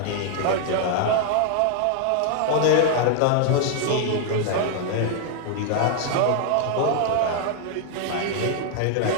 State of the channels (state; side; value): different; both; correlation 0.00